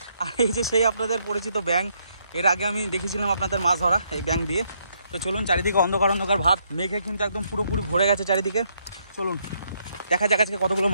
আর এই যে সেই আপনাদের পরিচিত ব্যাঙ। এর আগে আমি দেখেছিলাম আপনাদের মাছ ধরা এই ব্যাঙ দিয়ে। তো চলুন, চারিদিকে অন্ধকার অন্ধকার ভাব, মেঘে কিন্তু একদম পুরোপুরি ভরে গেছে চারিদিকে। চলুন দেখা যাক আজকে কতগুলো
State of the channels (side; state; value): both; inverted; correlation -0.74